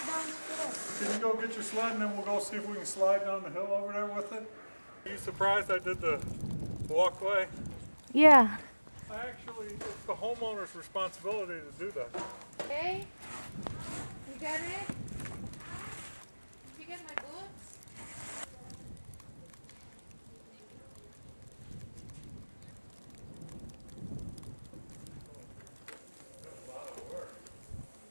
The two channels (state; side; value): inverted; both; correlation -1.00